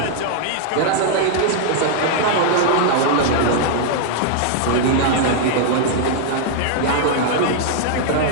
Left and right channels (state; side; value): different; both; correlation -0.01